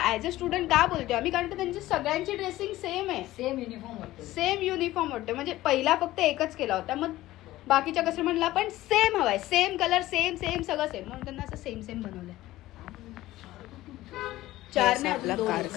ॲज अ स्टुडंट का बोलतोय आम्ही, कारण की त्यांची सगळ्यांची ड्रेसिंग सेम आहे, सेम युनिफॉर्म वाटतो. सेम युनिफॉर्म वाटतं. म्हणजे पहिला फक्त एकच केला होता, मग बाकीच्या कस्टमरला पण सेम हवाय, सेम कलर, सेम सेम सगळं सेम, म्हणून त्यांना असं सेम सेम बनवलंय. 4 ने आपला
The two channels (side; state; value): right; quieter; 16.2 dB